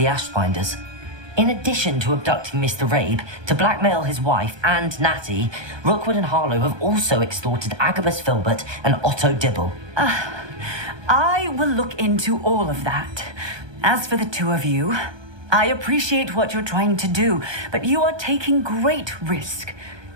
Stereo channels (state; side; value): late; left; 1.2 ms